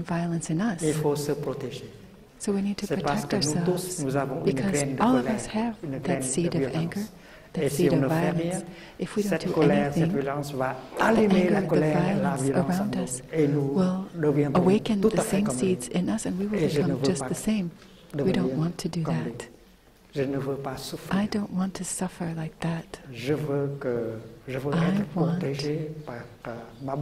violence in Il us. faut se protéger. So we need to C'est parce protect que nous tous, ourselves nous avons une because graine de all of colère, us have une graine that seed de of violence. anger, Et that si seed on of ne fait violence. rien, If we don't cette do colère, cette anything, violence va the allumer la anger, the colère et la violence violence en around nous. us Et nous will deviendrons awaken tout the à fait same comme seeds in us and we will Et je ne become veux just pas the same. We don't want to do comme that. lui. Je ne veux pas souffrir. I don't want to suffer like that. Je veux I être want protégé par ma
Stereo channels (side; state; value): both; identical; correlation 1.00